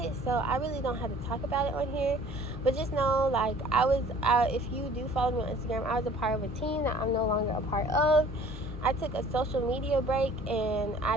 so I really don't have to talk about it on here. But just know, like, if you do follow me on Instagram, I was a part of a team that I'm no longer a part of. I took a social media break, and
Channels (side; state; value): both; normal; correlation 0.51